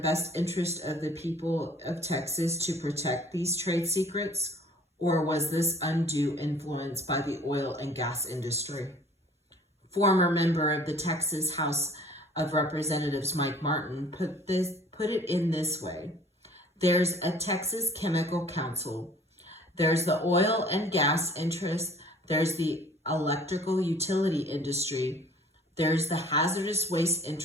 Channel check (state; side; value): normal; both; correlation 0.52